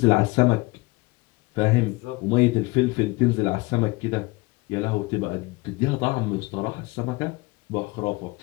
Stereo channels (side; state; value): right; quieter; 23.8 dB